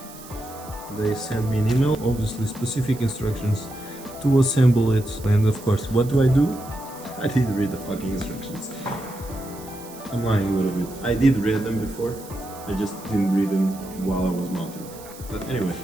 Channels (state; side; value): noise; right; hiss, 18 dB below the sound